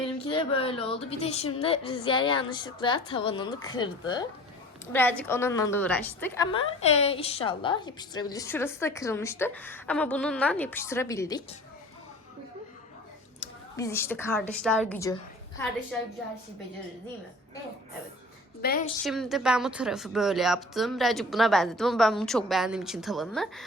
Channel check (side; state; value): both; normal; correlation 0.44